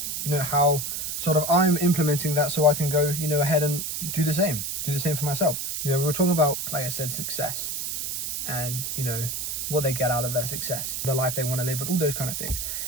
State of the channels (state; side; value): noise; right; hiss, 3 dB below the sound